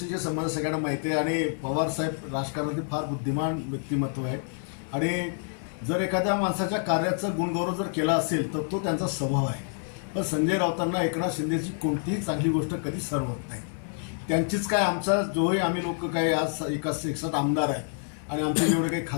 संबंध सगळ्यांना माहिती आहे आणि पवार साहेब राजकारणातील फार बुद्धिमान व्यक्तिमत्व आहे आणि जर एखाद्या माणसाच्या कार्याचा गुणगौरव जर केला असेल तर तो त्यांचा स्वभाव आहे. पण संजय राऊतांना एकनाथ शिंदेची कोणतीही चांगली गोष्ट कधीच सहन होत नाही. त्यांचीच काय आमचा जोही आम्ही लोक काय आज एकसाथ आमदार आहे आणि आमचे जेवढे काही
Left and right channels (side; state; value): right; silent; 60 dB below the other